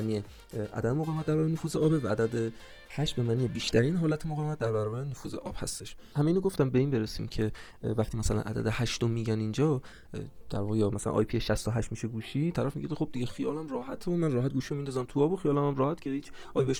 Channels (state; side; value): identical; both; correlation 1.00